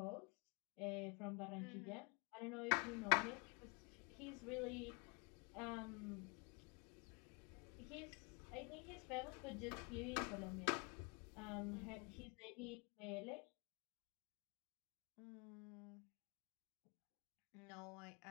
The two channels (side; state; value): right; quieter; 32.1 dB